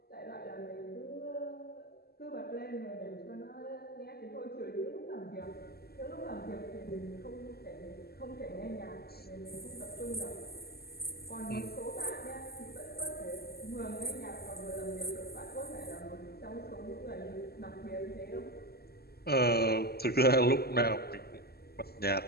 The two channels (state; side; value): late; right; 0.46 ms